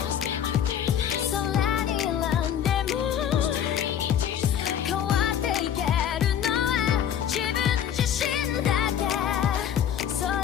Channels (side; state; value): right; quieter; 9.5 dB